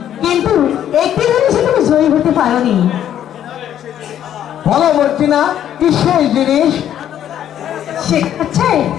কিন্তু একটি জিনিসে তুমি জয়ী হতে পারোনি। বলো মর্জিনা, কি সেই জিনিস? সে হচ্ছে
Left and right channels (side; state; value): right; quieter; 10.5 dB